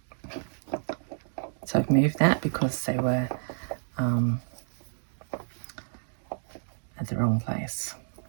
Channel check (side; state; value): left; silent; digital silence